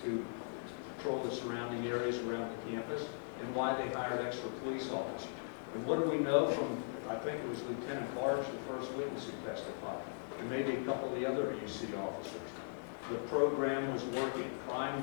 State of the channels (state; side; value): silent; right; digital silence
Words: to patrol the surrounding areas around the campus, and why they hired extra police officers. And what do we know from, I think it was Lieutenant Barge, the first witness who testified, and maybe a couple of the other UC officers? The program was working, crime